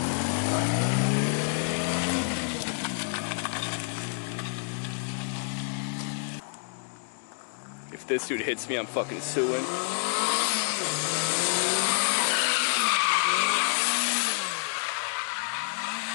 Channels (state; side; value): silent; right; digital silence